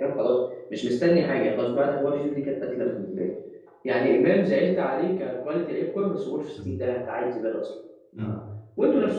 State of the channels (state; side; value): identical; both; correlation 1.00